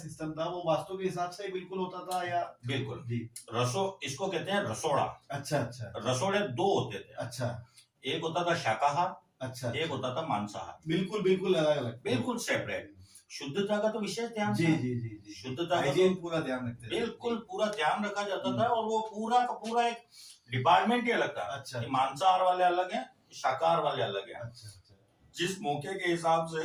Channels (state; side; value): identical; both; correlation 1.00